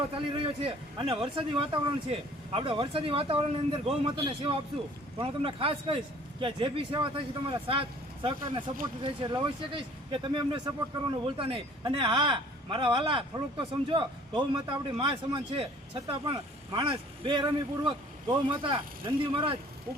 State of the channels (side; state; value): both; normal; correlation 0.53